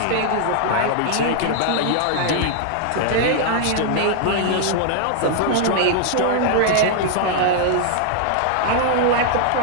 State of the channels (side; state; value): both; different; correlation 0.00